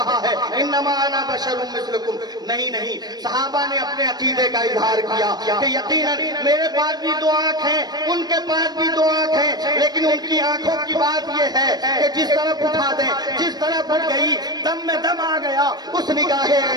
ہے انما انا بشر مثلکم۔ نہیں، صحابہ نے اپنے عقیدے کا اظہار کیا کہ یقیناً میرے پاس بھی دو آنکھ ہیں، ان کے پاس بھی دو آنکھ ہیں، لیکن ان کی آنکھوں کی بات یہ ہے کہ جس طرف اٹھا دیں، جس طرف اٹھ گئی، دم میں دم آ گیا، اس نگاہ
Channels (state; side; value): late; left; 0.19 ms